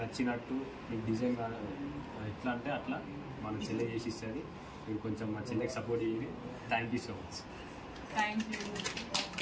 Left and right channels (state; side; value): identical; both; correlation 1.00